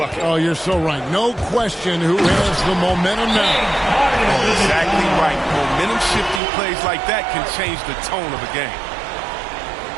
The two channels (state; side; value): drops out; left; at 6.4 s